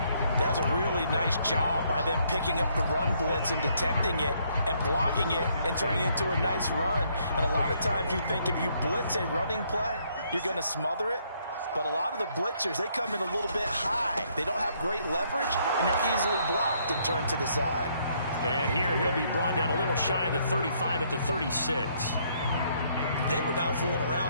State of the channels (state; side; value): inverted; both; correlation -0.69